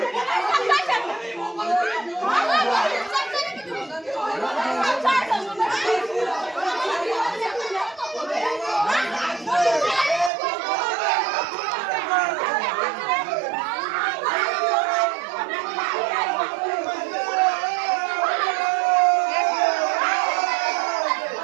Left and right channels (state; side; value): drops out; left; at 10.3 s